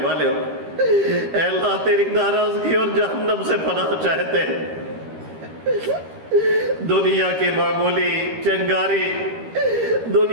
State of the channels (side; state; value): left; late; 13 ms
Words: والے ہو، اے اللہ تیری ناراضگی اور جہنم سے پناہ چاہتے ہیں، دنیا کی معمولی چنگاری،